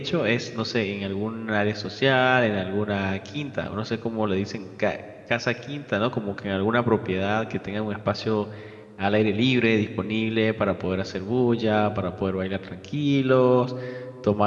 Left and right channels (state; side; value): identical; both; correlation 1.00